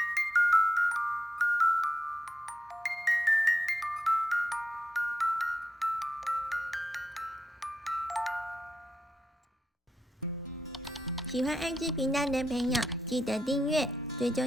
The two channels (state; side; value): normal; both; correlation 0.87